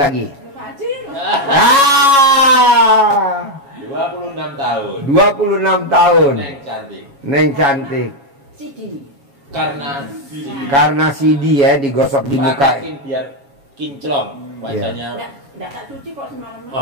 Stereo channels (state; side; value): late; left; 7.3 ms